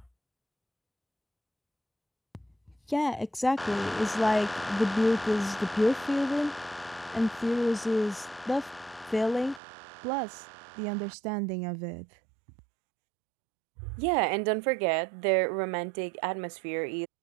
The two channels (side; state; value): left; drops out; at 9.6 s